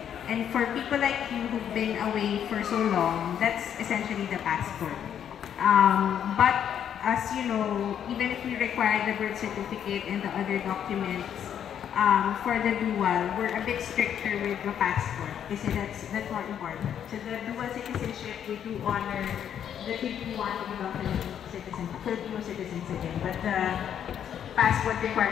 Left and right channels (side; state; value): right; quieter; 9.2 dB